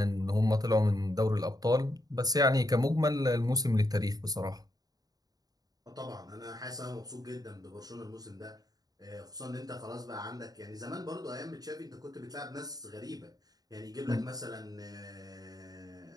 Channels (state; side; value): late; left; 0.18 ms